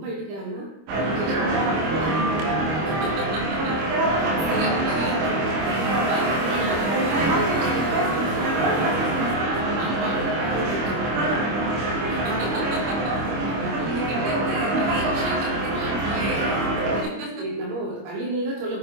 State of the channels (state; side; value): late; left; 25 ms